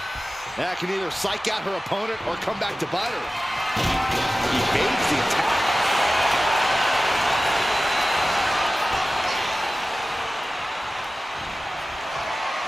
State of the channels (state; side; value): normal; both; correlation 0.96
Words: That can either psych out her opponent or come back to bite her. Evades the attack.